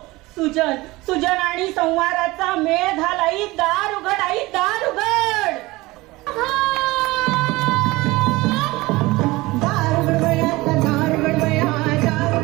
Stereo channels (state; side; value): quieter; left; 20.7 dB